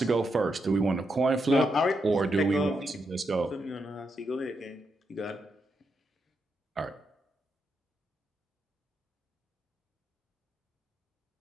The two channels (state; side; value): normal; both; correlation 0.83